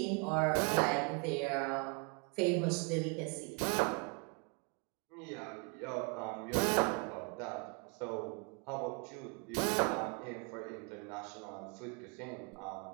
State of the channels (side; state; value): left; quieter; 32.9 dB